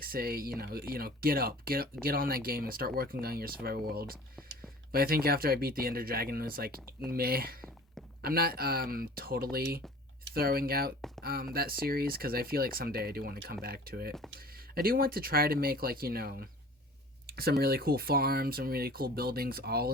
say, get on that game and start working on your survival world. But I think after I beat the Ender Dragon, it was like meh. I'm not totally throwing out that series because I feel like someday I do want to come back to it. I do want to try to make like some really cool farms, some really cool buildings all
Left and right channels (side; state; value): both; normal; correlation 0.44